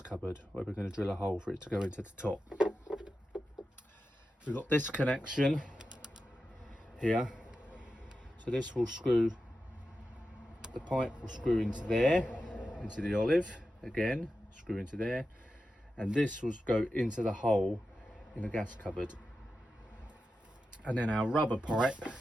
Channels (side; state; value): both; normal; correlation 0.91